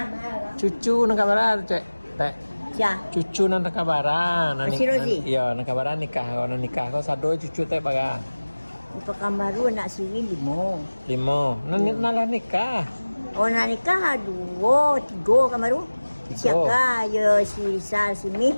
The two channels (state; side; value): inverted; both; correlation -1.00